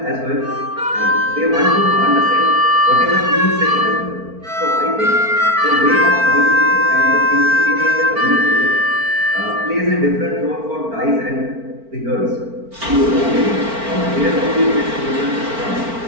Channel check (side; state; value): left; late; 4.4 ms